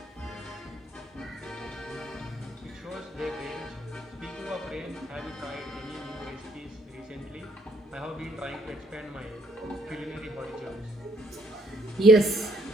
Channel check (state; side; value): normal; both; correlation 0.69